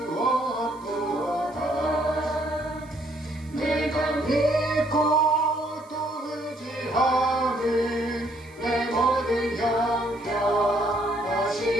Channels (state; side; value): noise; right; hiss, 28 dB below the sound